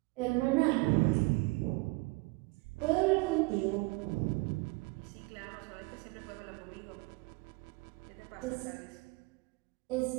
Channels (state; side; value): quieter; left; 25.1 dB